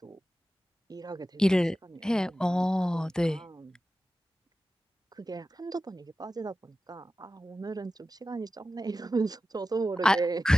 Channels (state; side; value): normal; both; correlation 0.94